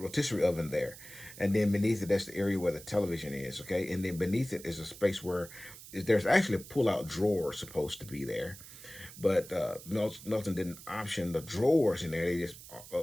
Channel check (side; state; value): right; noise; hiss, 16 dB below the sound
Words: oven there, and then beneath it, that's the area where the television is. Okay, and then beneath it is a space where there's actually a pull-out drawer supposed to be there. But Melton didn't option the drawers in there. They